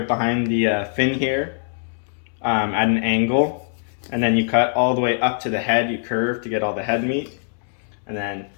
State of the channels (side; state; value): right; silent; 64 dB below the other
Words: behind the fin here at an angle, and then you cut all the way up to the head. You curve to get all the head meat, and then